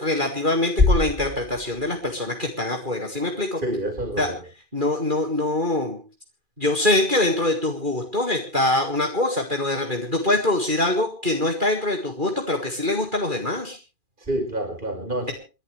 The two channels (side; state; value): left; late; 2.4 ms